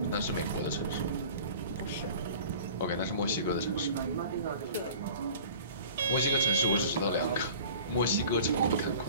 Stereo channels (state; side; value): inverted; both; correlation -0.43